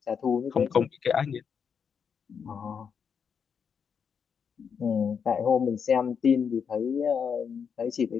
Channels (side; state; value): right; quieter; 6.7 dB